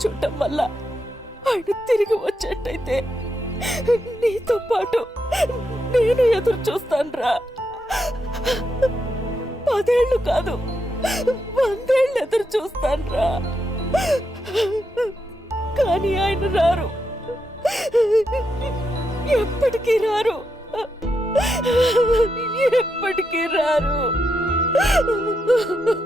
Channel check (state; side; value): normal; both; correlation 0.83